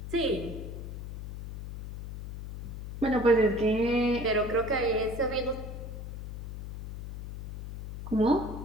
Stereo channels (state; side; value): noise; left; hum, 9 dB below the sound